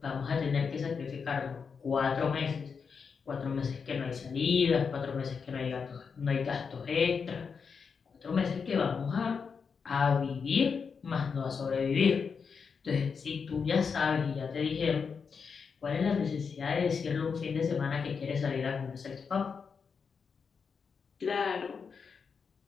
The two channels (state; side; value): quieter; right; 5.8 dB